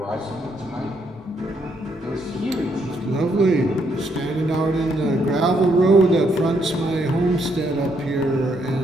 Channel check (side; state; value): both; normal; correlation 0.74